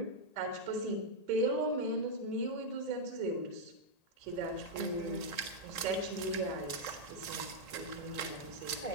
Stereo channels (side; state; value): right; late; 1.8 ms